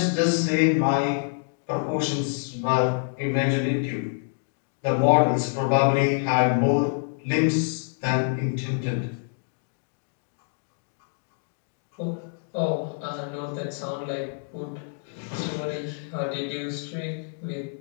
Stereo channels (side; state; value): right; silent; 61 dB below the other